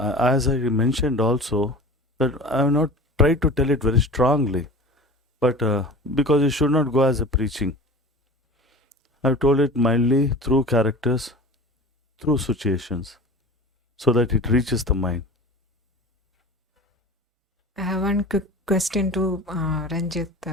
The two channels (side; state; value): both; normal; correlation 0.37